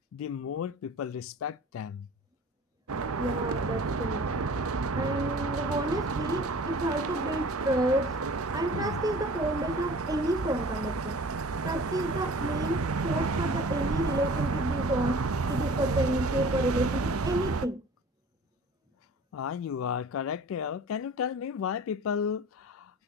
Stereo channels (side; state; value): both; normal; correlation 0.44